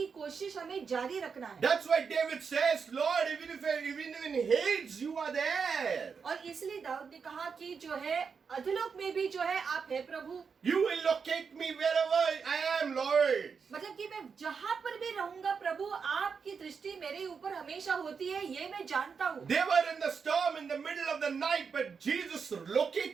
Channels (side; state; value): left; quieter; 5.8 dB